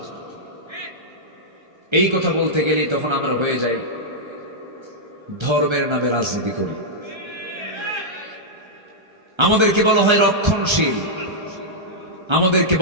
এই কথা বলতে গেলেই তখন আমরা হয়ে যাই ধর্মের নামে রাজনীতি করি। আমাদেরকে বলা হয় রক্ষণশীল, আমাদেরকে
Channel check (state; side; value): late; left; 1.3 ms